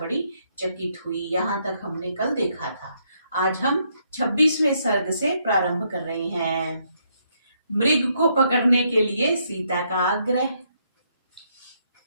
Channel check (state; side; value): inverted; both; correlation -0.74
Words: चकित हुई। यहाँ तक हमने कल देखा था। आज हम 26वें सर्ग से प्रारंभ कर रहे हैं। मृग को पकड़ने के लिए सीता का आग्रह।